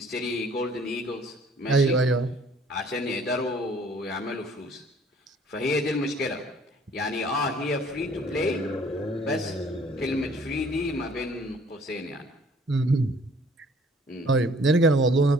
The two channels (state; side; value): normal; both; correlation 0.57